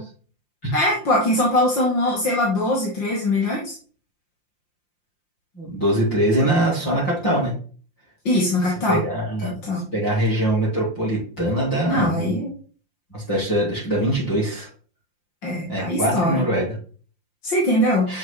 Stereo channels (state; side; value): late; right; 5.7 ms